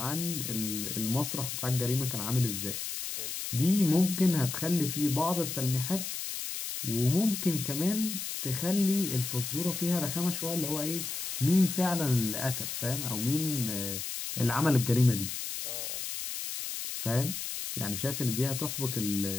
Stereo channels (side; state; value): left; noise; hiss, 5 dB below the sound